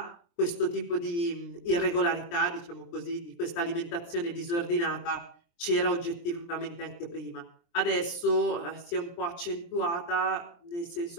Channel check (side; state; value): right; late; 23 ms